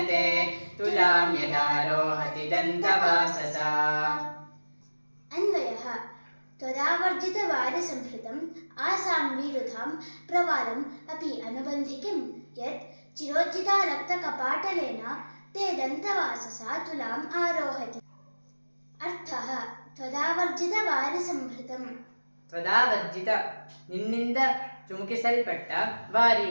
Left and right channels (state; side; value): inverted; both; correlation -1.00